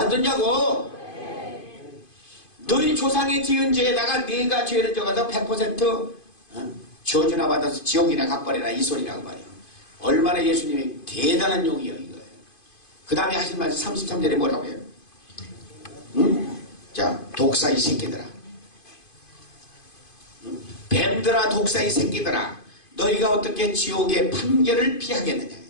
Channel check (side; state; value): right; late; 2.5 ms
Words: 너희 조상이 지은 죄에다가 네가 죄를 져가서 100% 저주나 받아서 지옥이나 가버려라. 이 소리라고 말이에요. 얼마나 예수님이 대단한 용이에요, 이거예요. 그 다음에 하신 말씀 33절에 뭐라고 해요? 자, 독사 이 새끼들아. 뱀들아, 독사 이 새끼들아. 너희가 어떻게 지옥의 판결을 피하겠느냐.